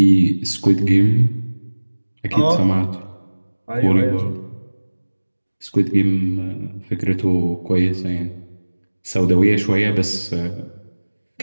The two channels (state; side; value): inverted; both; correlation -1.00